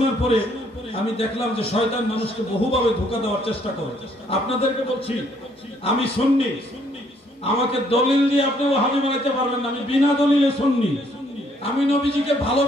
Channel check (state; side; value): normal; both; correlation 0.66